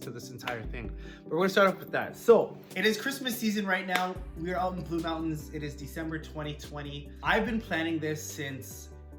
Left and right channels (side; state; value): both; identical; correlation 1.00